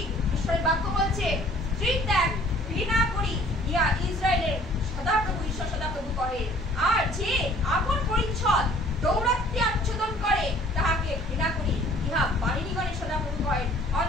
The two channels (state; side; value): normal; both; correlation 0.55